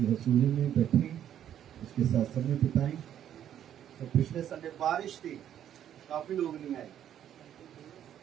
हसूरी में बैठे उसके साथ समय बिताएं। तो पिछले संडे बारिश थी, काफी लोग नहीं आए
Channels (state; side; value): quieter; left; 10.3 dB